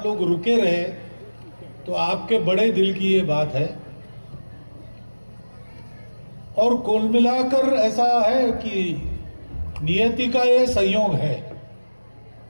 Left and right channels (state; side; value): inverted; both; correlation -1.00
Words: लोग रुके रहे, तो आपके बड़े दिल की ये बात है। और कुल मिलाकर ऐसा है कि नियति का ये संयोग है।